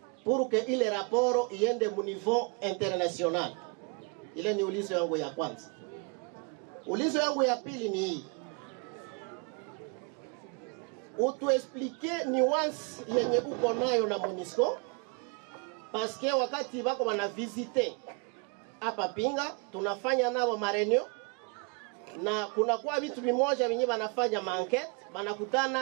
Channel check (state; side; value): quieter; left; 32.9 dB